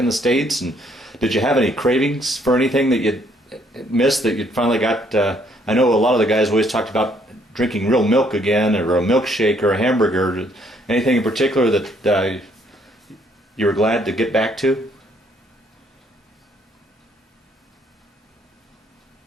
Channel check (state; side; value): normal; both; correlation 0.67